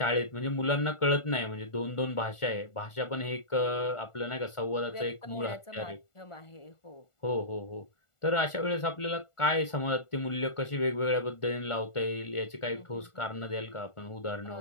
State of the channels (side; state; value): right; late; 1.4 ms